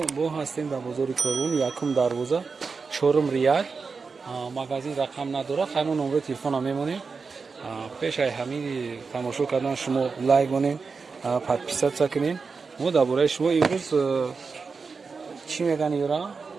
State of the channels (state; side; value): quieter; left; 4.8 dB